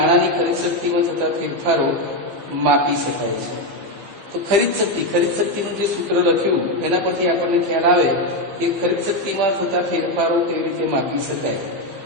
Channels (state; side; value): late; left; 15 ms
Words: ખરીદ શક્તિમાં થતા ફેરફારો માપી શકાય છે. તો ખરીદ શક્તિનું જે સૂત્ર લખ્યું એના પરથી આપણને ખ્યાલ આવે કે ખરીદ શક્તિમાં થતા ફેરફારો કેવી રીતે માપી શકાય.